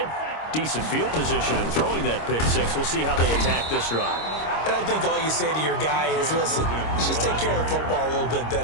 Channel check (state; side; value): late; right; 26 ms